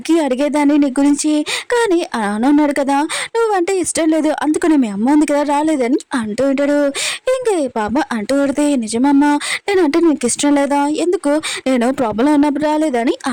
అడిగేదాన్ని నీ గురించి, కానీ నాన్న ఉన్నాడు కదా నువ్వంటే ఇష్టం లేదు, అందుకని మీ అమ్మ ఉంది కదా రాలేదని అంటూ ఉంటాడు. ఇంకా పాప అంటూ పడితే నిజమమ్మా నేనంటే నీకు ఇష్టం లేదా, ఎందుకు నేను ప్రాబ్లం ఉన్నప్పుడు రాలేదని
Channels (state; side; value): identical; both; correlation 1.00